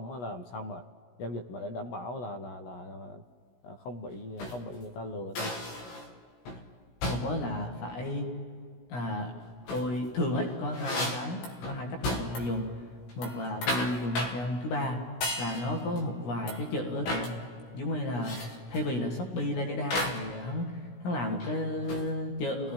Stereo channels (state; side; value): late; right; 17 ms